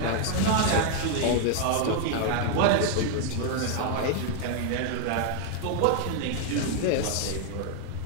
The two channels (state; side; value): different; both; correlation 0.00